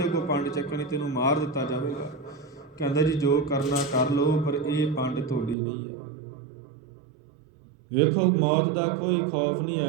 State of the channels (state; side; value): drops out; left; at 5.6 s